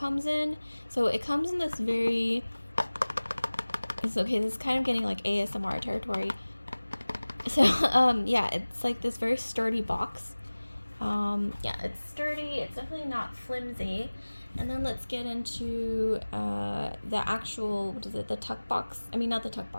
in. So it comes in this very, this is kind of getting like ASMR territory. So yeah, it's like this very sturdy box. Yeah, it's sturdy, it's definitely not flimsy. And then let's get into the actual, the tuck box, not the tuck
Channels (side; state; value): both; inverted; correlation -1.00